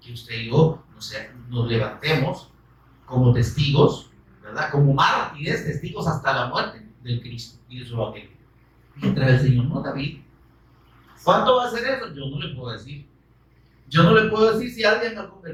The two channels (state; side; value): identical; both; correlation 1.00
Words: Que usted y yo nos levantemos como testigos, ¿verdad? Como mártires, testigos hasta la muerte del Cristo y de su evangelio. Mientras el Señor no David. ¿Cuánto va a ser eso? Yo no le puedo decir. Yo no le puedo decir si alguien al